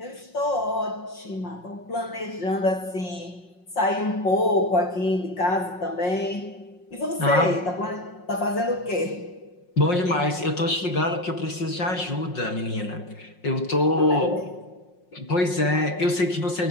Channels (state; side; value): late; right; 5.5 ms